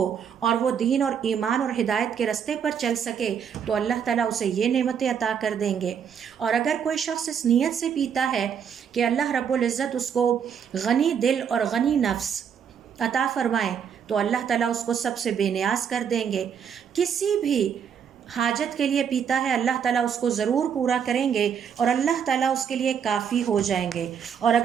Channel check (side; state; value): left; quieter; 7.6 dB